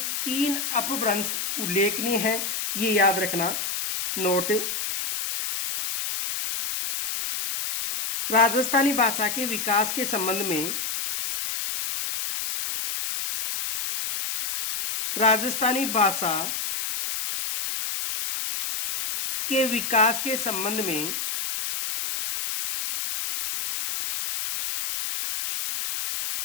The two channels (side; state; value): left; noise; hiss, 3 dB below the sound